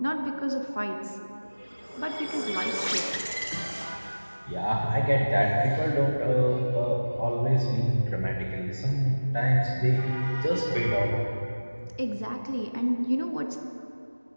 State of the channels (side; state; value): both; inverted; correlation -1.00